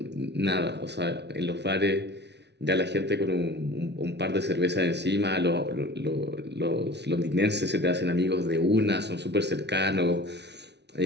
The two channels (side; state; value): left; late; 0.50 ms